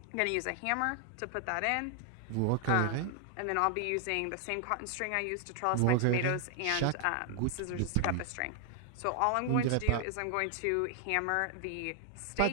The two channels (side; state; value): both; different; correlation 0.00